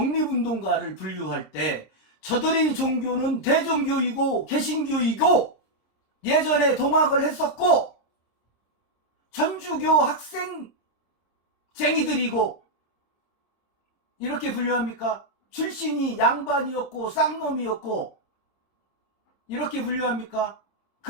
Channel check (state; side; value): late; right; 26 ms